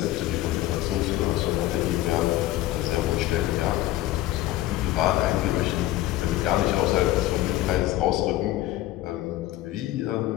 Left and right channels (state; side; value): quieter; right; 15.4 dB